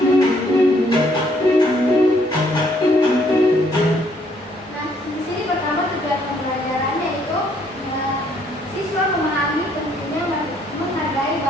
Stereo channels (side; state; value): both; normal; correlation 0.67